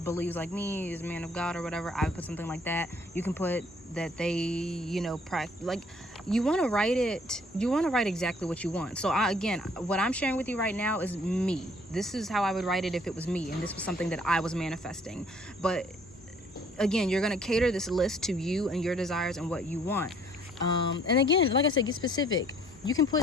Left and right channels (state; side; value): normal; both; correlation 0.60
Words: believes like me, is a man of God or whatever, I would put something like that. You can put that they, you know, like, you want to write exactly what you want. So again, what I'm sharing with you right now is me. This is how I would write it if it was me, and this was something that I was manifesting. But again, you're going to cater this list to you and your desires and what you want. And again, like I said, get specific. You can